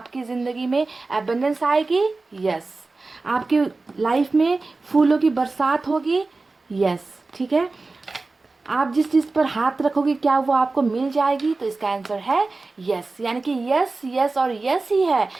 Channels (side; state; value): left; quieter; 3.6 dB